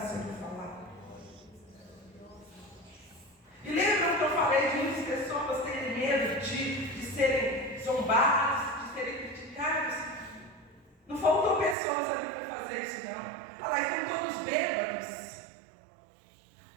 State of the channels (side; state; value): left; drops out; at 11.8 s